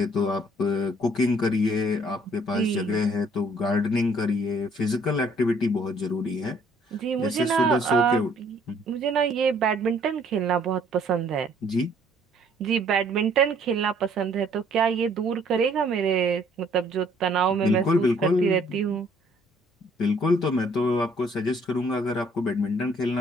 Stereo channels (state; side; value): normal; both; correlation 0.61